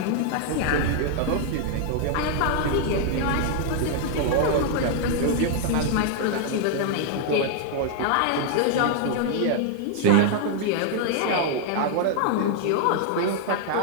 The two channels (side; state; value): both; different; correlation 0.00